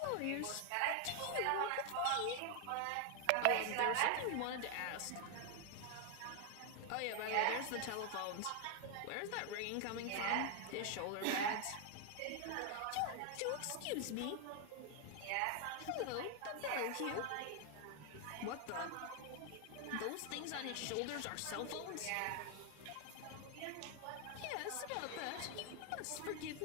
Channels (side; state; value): both; different; correlation 0.00